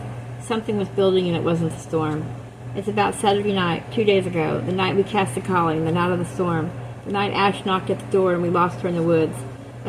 Something was building and it wasn't a storm. It's about Saturday night, 2 days ago, the night we cast the calling, the night of the storm, the night Ash knocked at the door and we lost her in the woods.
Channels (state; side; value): identical; both; correlation 1.00